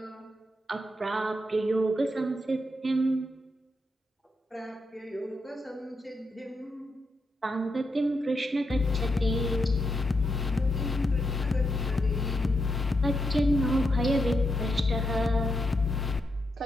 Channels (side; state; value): both; normal; correlation 0.82